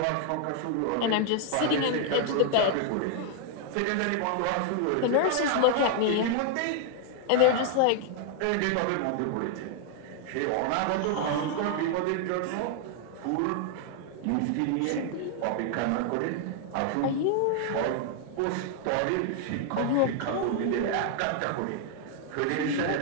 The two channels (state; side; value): different; both; correlation 0.00